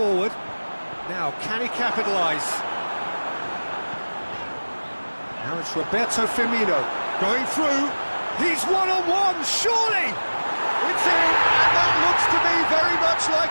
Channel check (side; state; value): both; inverted; correlation -1.00